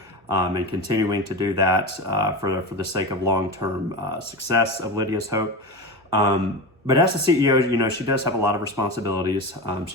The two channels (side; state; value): both; normal; correlation 0.23